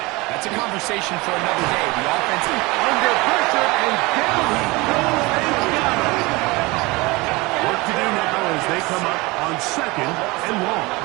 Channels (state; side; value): quieter; left; 23.7 dB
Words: that's a conversation for another day. The offense under pressure, and down he goes. They got it. Work to do now as they come up on 2nd and long.